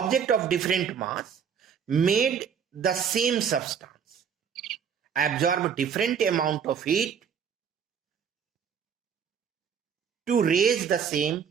the same substance absorb different amount of heat to raise the same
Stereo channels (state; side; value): quieter; left; 7.3 dB